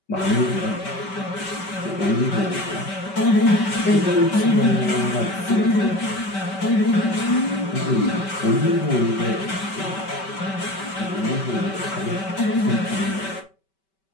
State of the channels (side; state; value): right; late; 5.2 ms